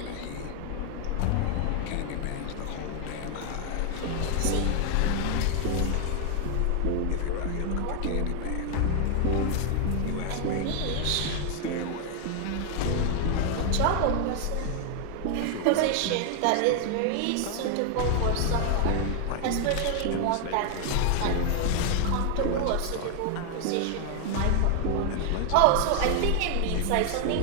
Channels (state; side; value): different; both; correlation 0.00